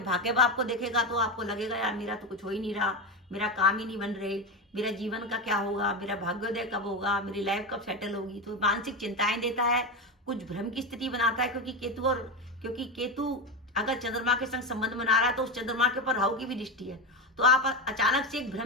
भाग्य भाव को देखेगा तो आपको लगेगा यार मेरा तो कुछ हो ही नहीं रहा, मेरा काम ही नहीं बन रहे, मेरा जीवन का क्या होगा, मेरा भाग्योदय कब होगा, मेरी लाइफ कब सेटल होगी। तो मानसिक चिंताएं देता है, कुछ भ्रम की स्थिति बनाता है, क्योंकि केतु अगर चंद्रमा के संग संबंध बना रहा है तो उस चंद्रमा के ऊपर राहु की भी दृष्टि है। तो आप अचानक से एक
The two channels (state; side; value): normal; both; correlation 0.17